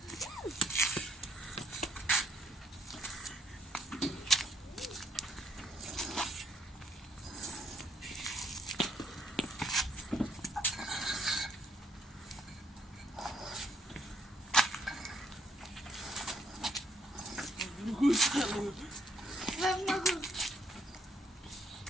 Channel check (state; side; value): normal; both; correlation 0.71